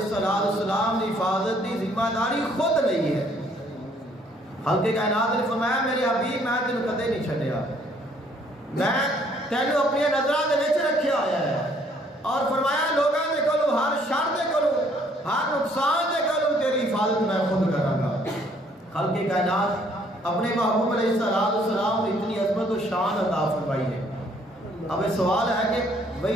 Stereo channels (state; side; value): normal; both; correlation 0.63